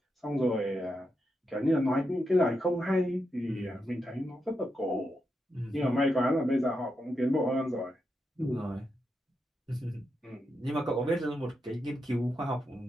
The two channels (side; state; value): both; normal; correlation 0.85